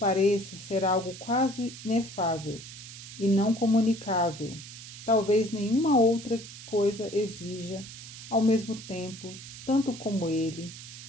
ser algo quase inefável e não comunicável. Talvez nenhuma outra coisa exija, ao mesmo tempo, tanto como ele,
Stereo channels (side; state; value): right; noise; hiss, 14 dB below the sound